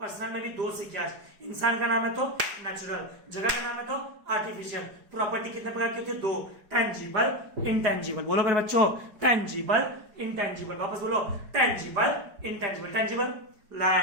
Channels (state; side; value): late; left; 4.8 ms